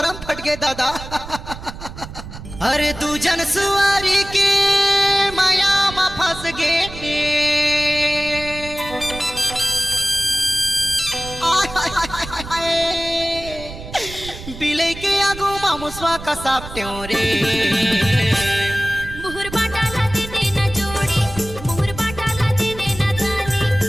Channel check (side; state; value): right; noise; rumble, 12 dB below the sound